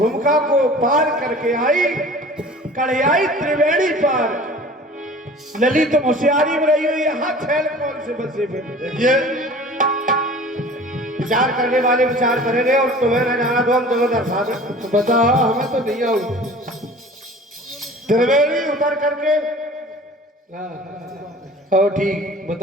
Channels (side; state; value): both; normal; correlation 0.44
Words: को पार करके आई, कढ़ियाई त्रिवेणी पार, लली तो होशियारी में रही हुई, यहाँ छैल कौन से बसे फिर? देखिए विचार करने वाले विचार करेंगे और तुम्हें न जाना तो हम तुम्हें दर्शा दें। तो बता, हमें तो नहीं आऊ। त्रिवेणी उतर करके, हाँ ठीक,